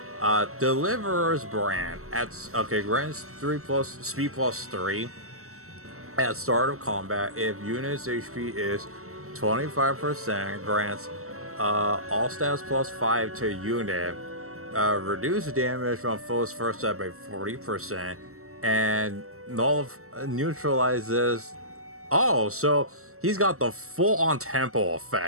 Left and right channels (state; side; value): late; left; 0.63 ms